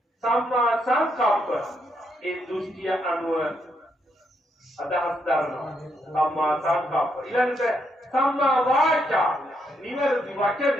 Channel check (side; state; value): both; normal; correlation 0.78